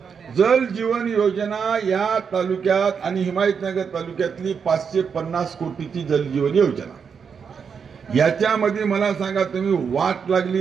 जलजीवन योजना या तालुक्यात आणि हिमायतनगर तालुक्यातली 550 कोटीची जलजीवन योजना. याच्यामध्ये मला सांगा तुम्ही, वाट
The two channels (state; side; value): quieter; left; 6.4 dB